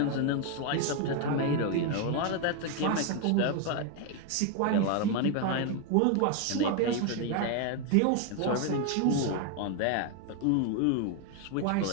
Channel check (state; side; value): different; both; correlation 0.01